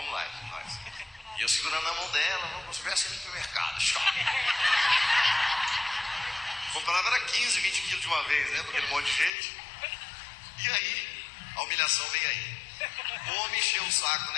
lá, nós. E eu segurando na mão dela, vamos ver assim no supermercado, comprava era 15, 20 quilos de uma vez, né? Porque um monte de gente. E aí, a humilhação veio aí. O homem encheu o saco do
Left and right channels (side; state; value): right; drops out; at 9.3 s